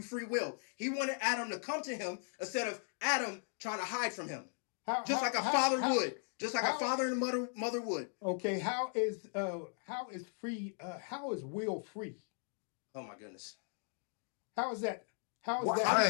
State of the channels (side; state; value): right; silent; 53 dB below the other